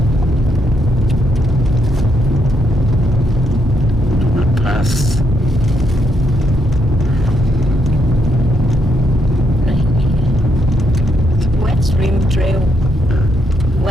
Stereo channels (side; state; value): both; normal; correlation 0.78